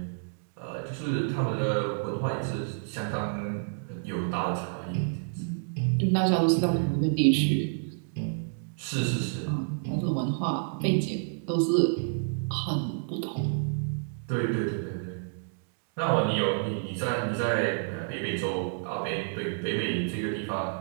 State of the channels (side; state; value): left; silent; digital silence